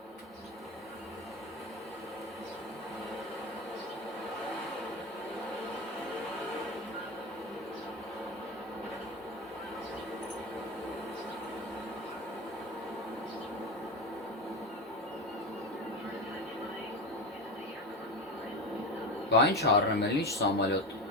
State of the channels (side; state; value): both; normal; correlation 0.21